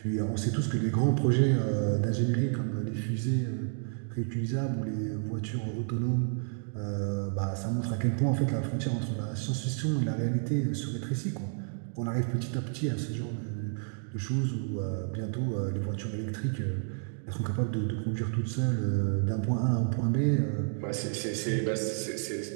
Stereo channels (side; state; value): left; silent; 57 dB below the other